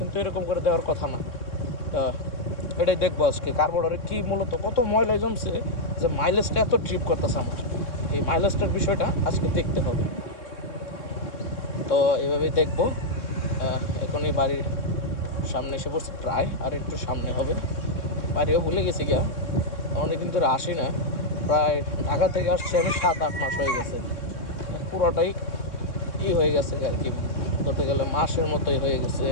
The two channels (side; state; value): right; late; 3.6 ms